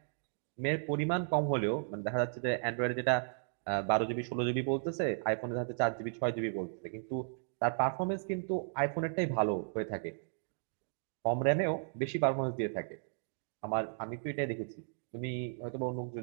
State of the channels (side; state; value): left; silent; digital silence